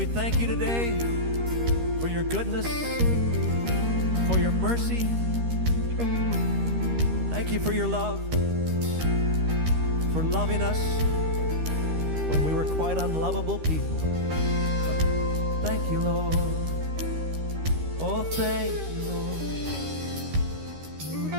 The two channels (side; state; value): left; late; 13 ms